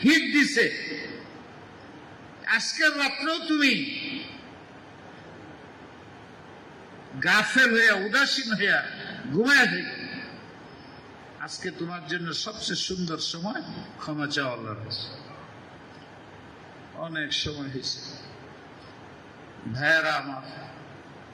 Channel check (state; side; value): identical; both; correlation 1.00